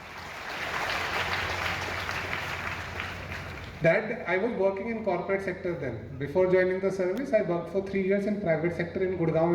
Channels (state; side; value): identical; both; correlation 1.00